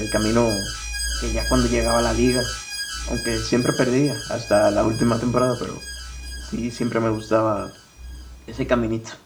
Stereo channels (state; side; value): identical; both; correlation 1.00